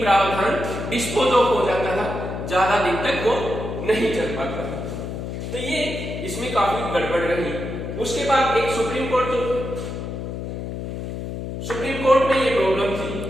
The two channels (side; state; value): left; noise; hum, 6 dB below the sound